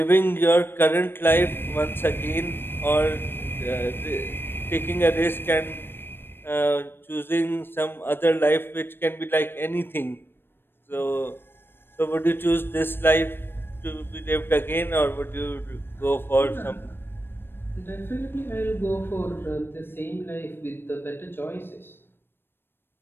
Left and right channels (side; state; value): right; late; 0.10 ms